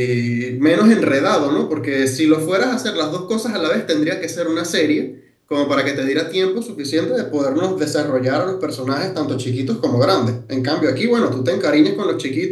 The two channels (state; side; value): identical; both; correlation 1.00